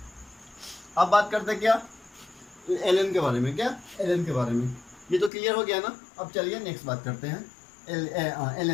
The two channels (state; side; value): drops out; right; at 5.3 s